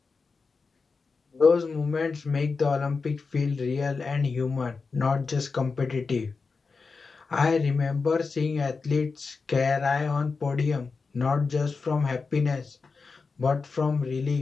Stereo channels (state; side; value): quieter; right; 4.6 dB